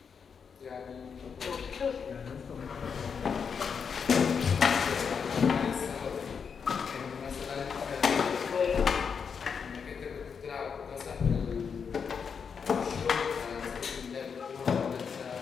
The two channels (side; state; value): right; quieter; 6.3 dB